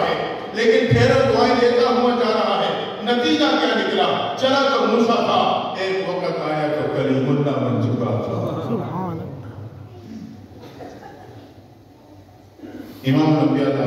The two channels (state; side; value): identical; both; correlation 1.00